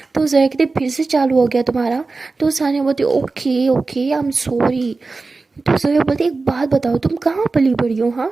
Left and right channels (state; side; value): quieter; left; 3.8 dB